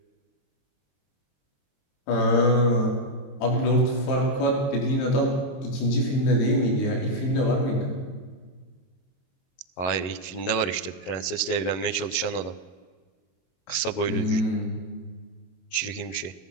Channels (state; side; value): late; right; 22 ms